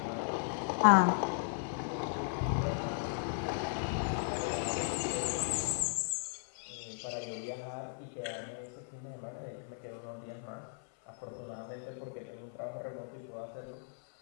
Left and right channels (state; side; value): silent; right; 53 dB below the other